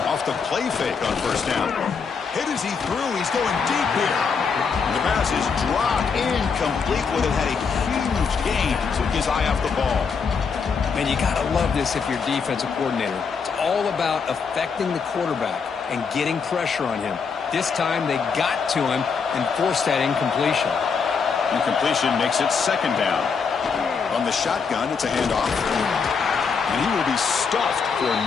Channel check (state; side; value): quieter; right; 5.7 dB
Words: Off the play fake on first down. Hit as he threw. He's going deep here. And the pass is dropped incomplete. Would have had a huge gain. Took his eye off the ball. Man, you got to love this if you're defensive coordinator. It's all about affecting the quarterback and getting pressure on him. This time they got to him and forced that incompletion. Incompletion makes it second down. On the shotgun, it's a handoff. And he will be stuffed for